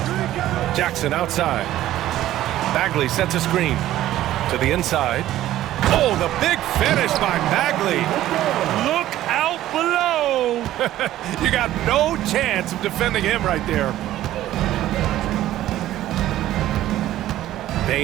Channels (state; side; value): quieter; left; 13.8 dB